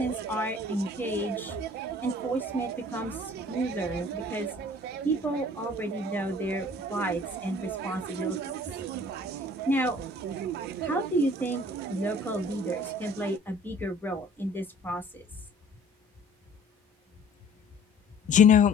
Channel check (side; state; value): both; normal; correlation 0.51